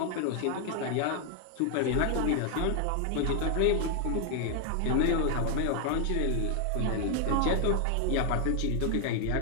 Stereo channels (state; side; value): different; both; correlation 0.00